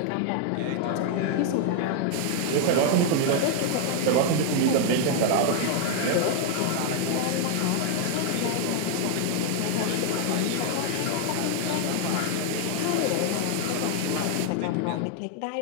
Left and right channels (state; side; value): different; both; correlation 0.00